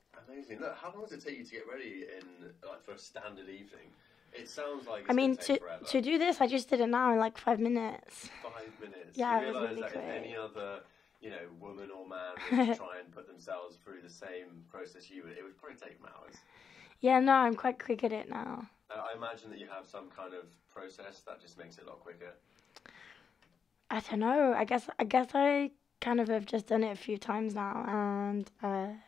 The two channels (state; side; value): quieter; right; 6.5 dB